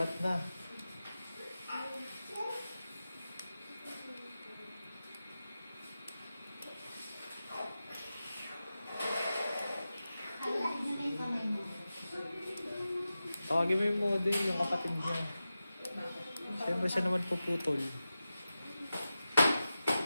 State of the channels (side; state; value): both; inverted; correlation -0.93